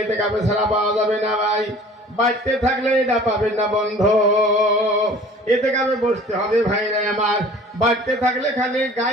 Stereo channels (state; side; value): normal; both; correlation 0.47